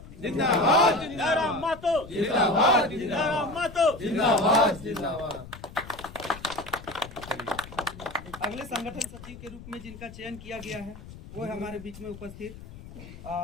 जिंदाबाद, जयराम महतो जिंदाबाद, जयराम महतो जिंदाबाद, जिंदाबाद। अगले संगठन सचिव के रूप में जिनका चयन किया गया है वो है हमारे बीच में उपस्थित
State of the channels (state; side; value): noise; left; rumble, 16 dB below the sound